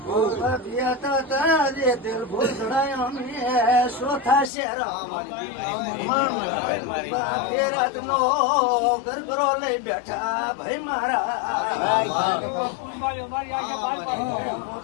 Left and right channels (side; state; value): right; drops out; at 4.5 s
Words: દિલ ભૂલ ચોથા શેર રાત નો ગરબરો લઈ બેઠા ભાઈ મારા